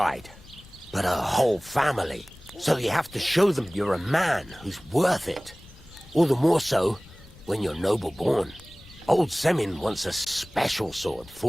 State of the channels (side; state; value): left; noise; rumble, 22 dB below the sound